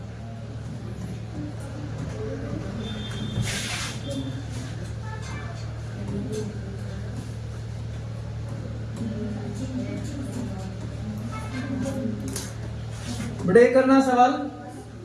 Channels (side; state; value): both; identical; correlation 1.00